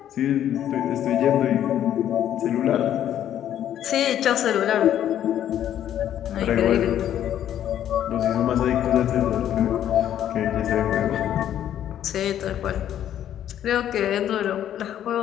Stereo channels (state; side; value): quieter; right; 10.8 dB